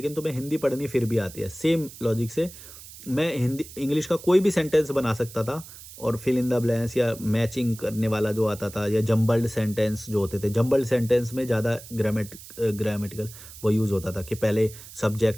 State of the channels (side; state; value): right; noise; hiss, 16 dB below the sound